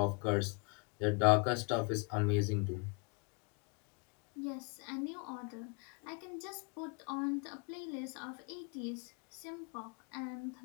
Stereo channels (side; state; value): right; quieter; 33.7 dB